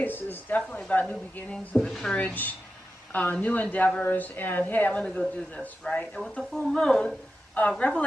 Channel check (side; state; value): both; normal; correlation 0.91